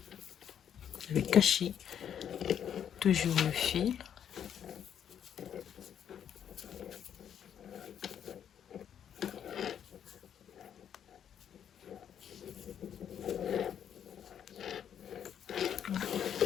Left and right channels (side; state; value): right; quieter; 9.0 dB